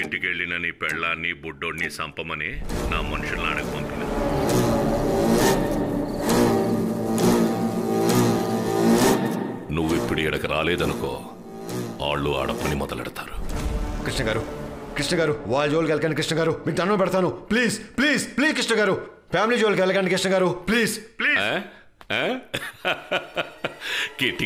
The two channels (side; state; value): both; identical; correlation 1.00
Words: వెళ్ళిన నీ పెళ్ళాన్ని బుడ్డోడిని సంపమని నా మనుషులను అడగ పంపిన. నువ్వు ఇప్పుడు ఇక్కడికి రాలేదనుకో, వాళ్ళు ఆడపని మొదలెడతారు. కృష్ణ గారు, కృష్ణ గారు, వాళ్ళ జోలికి వెళ్ళకండి కృష్ణ గారు, మీకు దండం పెడతాను. ప్లీజ్ ప్లీజ్ ప్లీజ్ కృష్ణ గారు, ఫ్యామిలీ జోలికి వెళ్ళకండి కృష్ణ గారు, ప్లీజ్ ప్లీజ్.